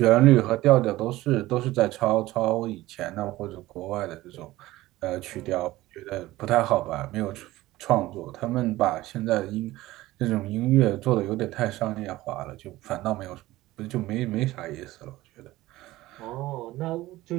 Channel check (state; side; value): quieter; left; 17.4 dB